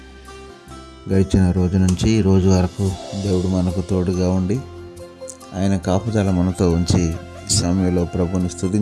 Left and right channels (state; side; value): identical; both; correlation 1.00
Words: గడిచిన రోజు నుంచి ఈ రోజు వరకు దేవుడు మనకు తోడుగా ఉండి ఆయన కాపుదల మనతో ఉంచి ఈ సమయంలో ప్రభుని